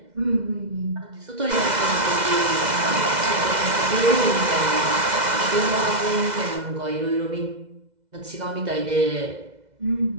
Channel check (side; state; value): left; late; 2.0 ms